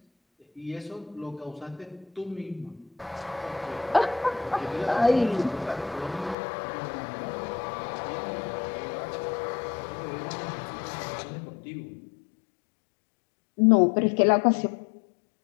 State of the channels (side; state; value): right; drops out; at 6.4 s